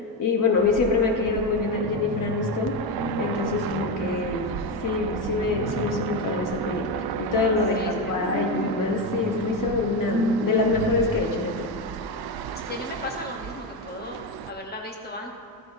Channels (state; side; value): normal; both; correlation 0.13